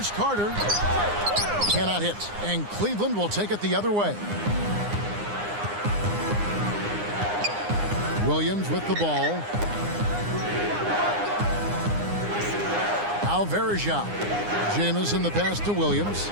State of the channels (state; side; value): late; left; 9.8 ms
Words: Carter. Cannot hit. And Cleveland will take it the other way. Williams with the ball. Now Varejao. Jamison the pass to Williams.